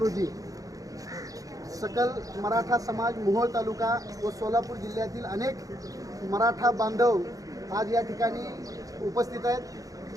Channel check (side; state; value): left; late; 0.17 ms